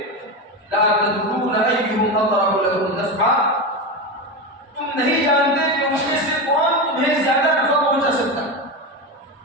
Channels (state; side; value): normal; both; correlation 0.18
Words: لا تدرون ایہم اقرب لکم نسبا، تم نہیں جانتے کہ ان میں سے کون تمہیں زیادہ نفع پہنچا سکتا ہے،